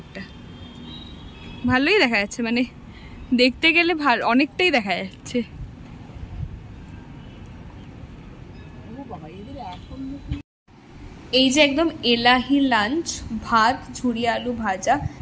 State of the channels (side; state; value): both; identical; correlation 1.00